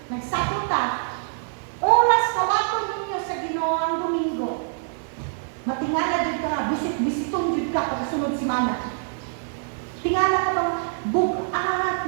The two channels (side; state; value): left; silent; 57 dB below the other